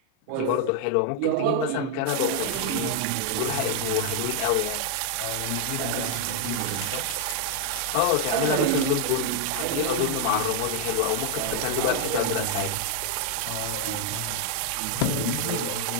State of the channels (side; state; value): both; different; correlation 0.00